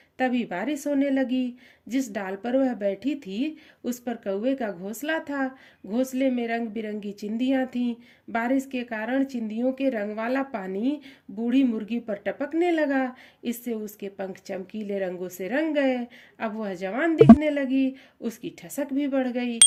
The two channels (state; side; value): identical; both; correlation 1.00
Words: तभी बारिश होने लगी। जिस डाल पर वह बैठी थी उस पर कौवे का घोंसला था। घोंसले में रंग बिरंगी चिंदियां थीं। बारिश के कारण चिंदियों के रंग वाला पानी बूढ़ी मुर्गी पर टपकने लगा। इससे उसके पंख चमकीले रंगों से रंग गए। अब वह जवान दिखने लगी। उसकी ठसक भी बढ़ गई।